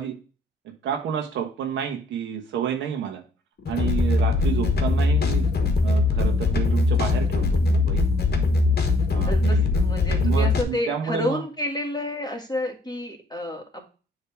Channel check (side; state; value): both; normal; correlation 0.63